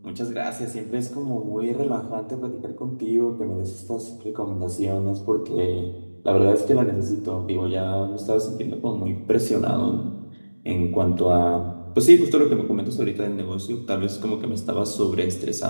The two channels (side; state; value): both; inverted; correlation -1.00